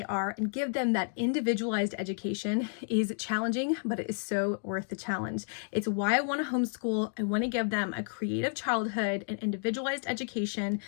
are and give them that individualized education is challenging, but it is so worth the challenge. It's why I want to homeschool. I want to give them a creative childhood and individualized education,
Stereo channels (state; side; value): silent; right; digital silence